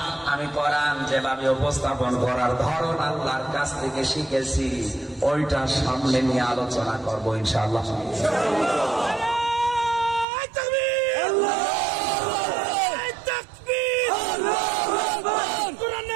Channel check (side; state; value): left; drops out; at 10.2 s